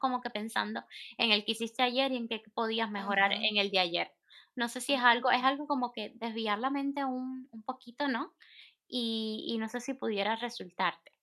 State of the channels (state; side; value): identical; both; correlation 1.00